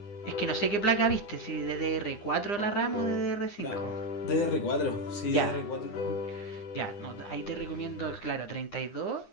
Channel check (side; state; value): right; late; 9.8 ms